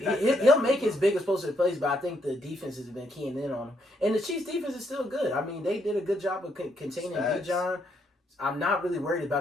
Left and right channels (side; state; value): both; normal; correlation 0.75